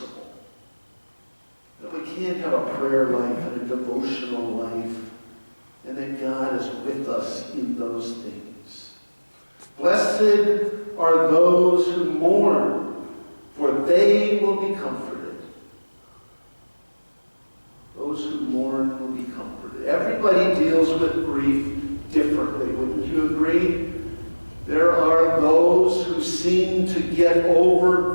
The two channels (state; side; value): inverted; both; correlation -1.00